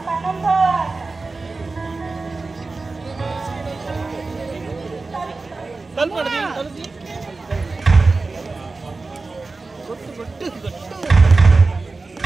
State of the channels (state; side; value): quieter; left; 3.7 dB